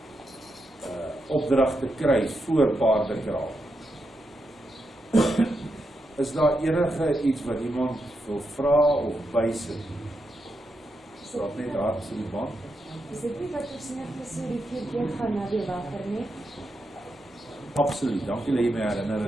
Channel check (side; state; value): both; normal; correlation 0.85